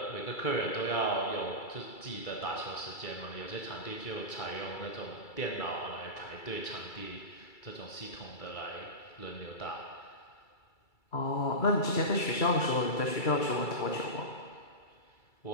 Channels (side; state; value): right; late; 2.3 ms